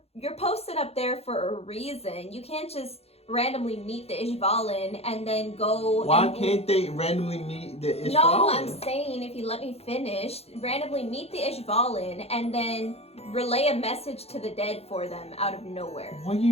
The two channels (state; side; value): late; right; 0.29 ms